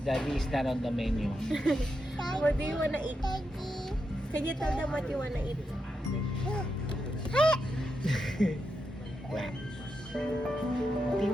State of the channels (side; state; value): both; normal; correlation 0.85